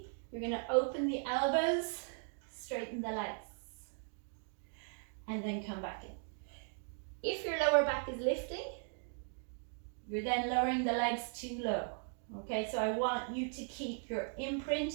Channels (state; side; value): silent; left; 52 dB below the other